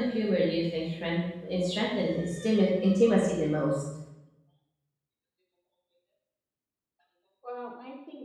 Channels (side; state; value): both; identical; correlation 1.00